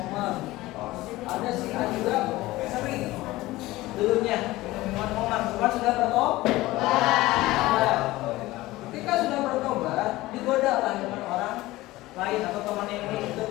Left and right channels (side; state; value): right; quieter; 18.3 dB